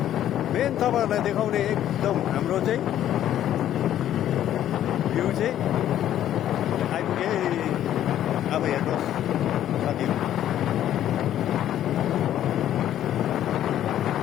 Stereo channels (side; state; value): right; quieter; 11.6 dB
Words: मेन तपाईँहरूलाई देखाउने एकदम हाम्रो चाहिँ भ्यू चाहिँ आइपुगे अब हेर्नुहोस् साथीहरू